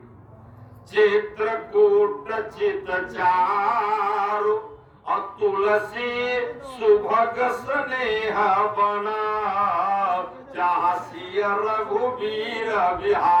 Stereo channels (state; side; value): identical; both; correlation 1.00